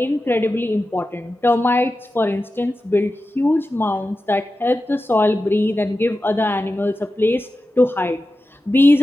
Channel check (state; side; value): normal; both; correlation 0.93